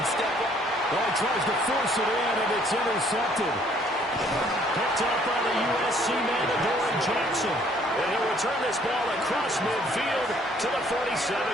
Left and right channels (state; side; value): normal; both; correlation 0.62